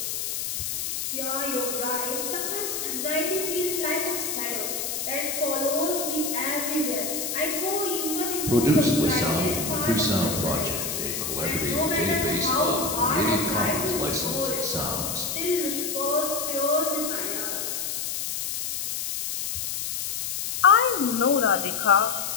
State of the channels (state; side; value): noise; left; hiss, 3 dB below the sound